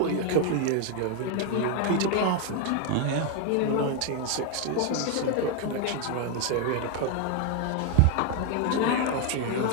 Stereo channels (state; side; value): different; both; correlation 0.01